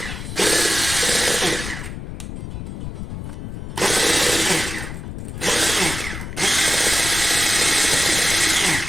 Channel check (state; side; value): noise; left; rumble, 8 dB below the sound